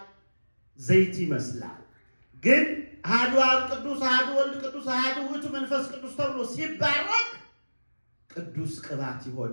ዘይት ይመስላል። ግን አሐዱ አብ ቅዱስ፣ አሐዱ ወልድ ቅዱስ፣ አሐዱ ውእቱ መንፈስ ቅዱስ ተብሎ ሲባረክ ቅዱስ ቅባት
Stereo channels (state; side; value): inverted; both; correlation -1.00